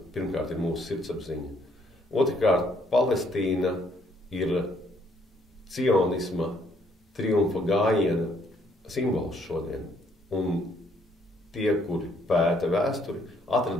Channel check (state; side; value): normal; both; correlation 0.68